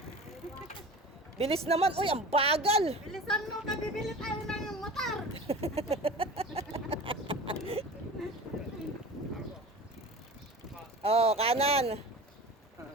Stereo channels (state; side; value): normal; both; correlation 0.35